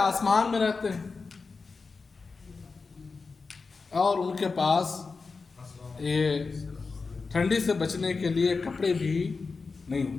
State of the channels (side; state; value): right; quieter; 4.4 dB